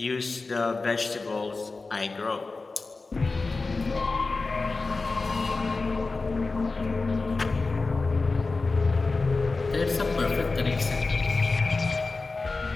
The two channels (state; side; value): quieter; right; 3.8 dB